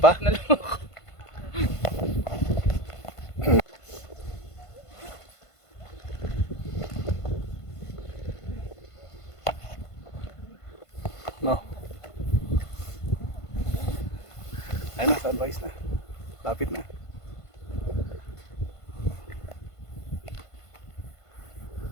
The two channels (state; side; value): late; right; 1.5 ms